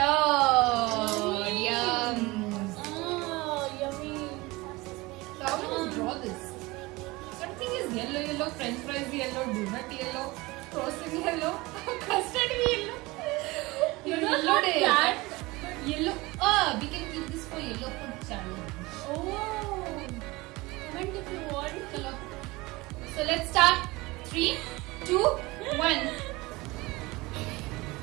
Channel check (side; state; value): left; quieter; 22.1 dB